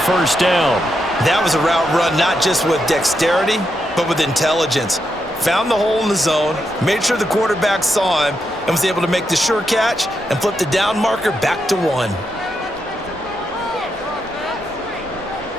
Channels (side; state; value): both; normal; correlation 0.83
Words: first down. That was a route run not just with dexterity, but with intelligence. Found the hole in the zone, made sure the quarterback saw him, and was able to make the sure catch and flip the down marker back to 1.